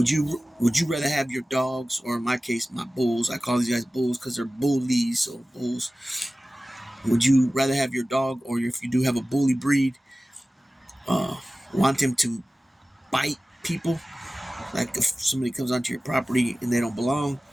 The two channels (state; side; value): normal; both; correlation 0.96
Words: you rather have your dogs, or in my case, my bulls? I call these guys bulls because they're bullies, so bulls. Would you rather have your dog, or if you do have a bully breed, want him to bite people, like if somebody comes onto your property and they don't belong,